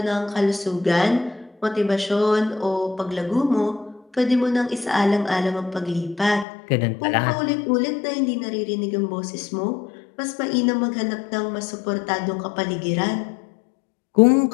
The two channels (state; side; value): drops out; right; at 6.5 s